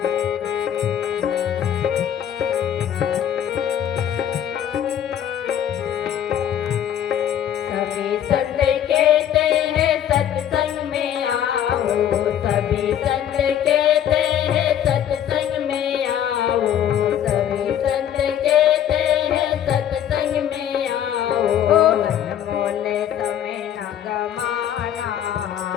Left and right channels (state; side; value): quieter; right; 10.0 dB